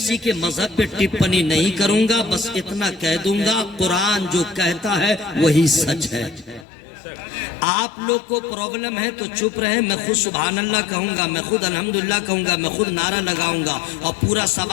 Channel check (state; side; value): drops out; right; at 6.7 s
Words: کے مذہب پہ ٹپنی نہیں کروں گا، بس اتنا کہہ دوں گا قرآن جو کہتا ہے وہی سچ ہے۔ آپ لوگ کو پرابلم ہے تو چپ رہے، میں خود سبحان اللہ کہوں گا، میں خود الحمدللہ کہوں گا، میں خود نعرہ لگاؤں گا اور پورا